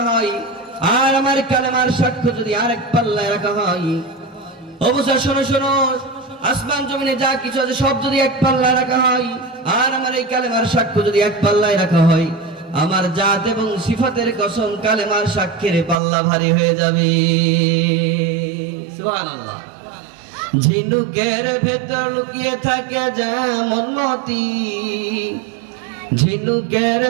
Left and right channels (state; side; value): drops out; left; at 16.0 s